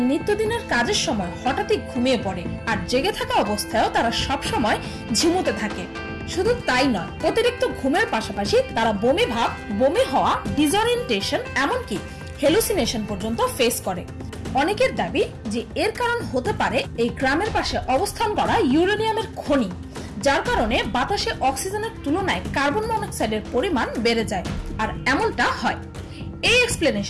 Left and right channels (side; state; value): both; identical; correlation 1.00